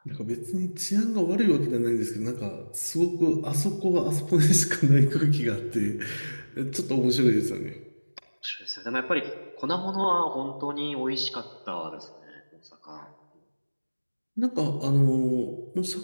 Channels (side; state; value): both; inverted; correlation -1.00